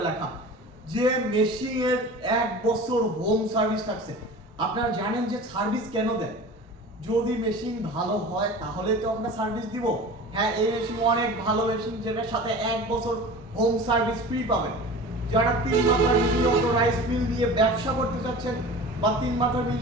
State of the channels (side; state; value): both; normal; correlation 0.37